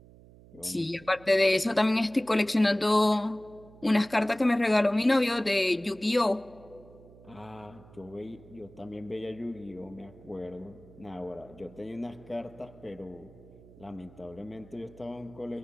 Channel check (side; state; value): right; noise; hum, 22 dB below the sound